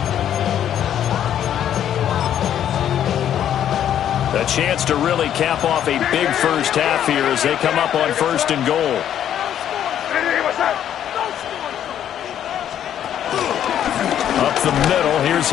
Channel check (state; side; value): quieter; right; 10.3 dB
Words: A chance to really cap off a big first half here as they come up on first and goal. Up the middle, here's